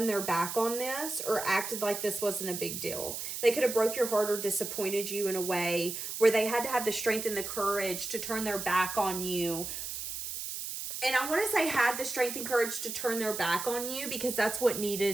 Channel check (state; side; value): noise; right; hiss, 6 dB below the sound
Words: their back on this or acted like this wasn't a big deal. They could have broke your heart or disappointed you in a way where they had to have the strength and the courage to turn their back on you And I want to say had the strength and courage to turn their back on you because that's what